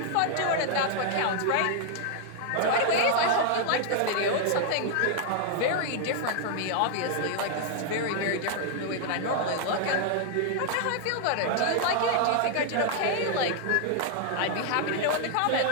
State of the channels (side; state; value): both; different; correlation 0.00